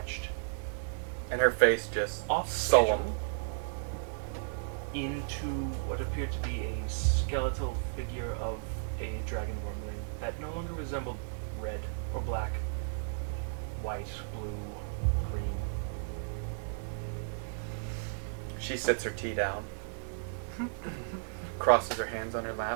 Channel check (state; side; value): silent; left; digital silence